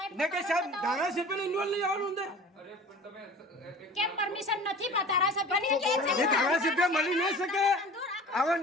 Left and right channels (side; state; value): both; normal; correlation 0.40